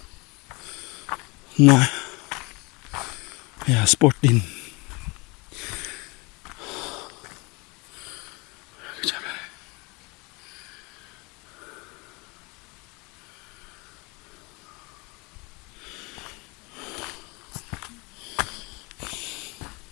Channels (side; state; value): right; quieter; 27.2 dB